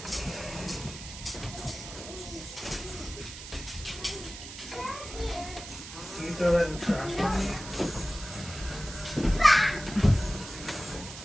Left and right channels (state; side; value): noise; right; hiss, 12 dB below the sound